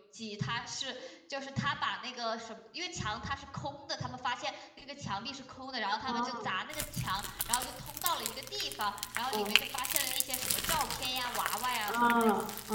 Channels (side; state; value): both; identical; correlation 1.00